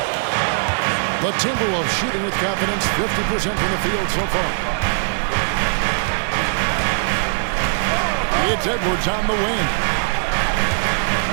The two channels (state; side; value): silent; left; digital silence